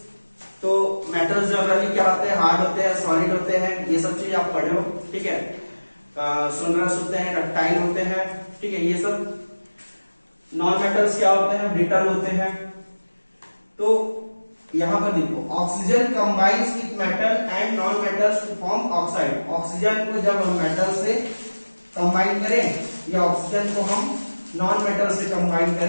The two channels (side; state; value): both; inverted; correlation -1.00